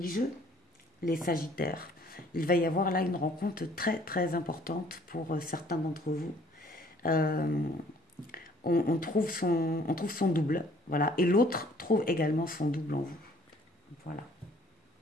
jeu, les Sagittaires. Il va y avoir là une rencontre très, très importante pour certains d'entre vous. On trouve son double, voilà, et l'autre trouve également son double en vous. Voilà.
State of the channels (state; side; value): normal; both; correlation 0.58